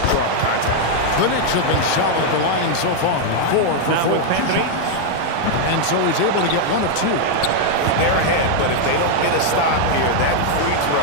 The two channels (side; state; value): both; different; correlation 0.00